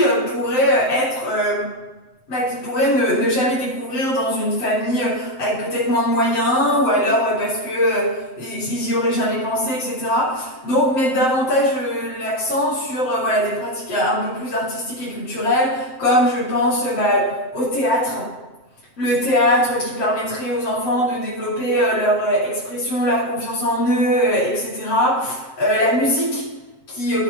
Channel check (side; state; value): right; late; 7.7 ms